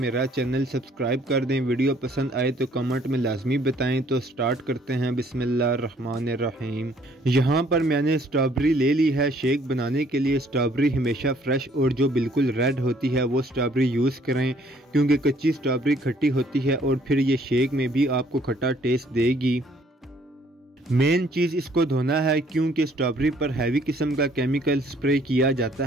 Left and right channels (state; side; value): normal; both; correlation 0.62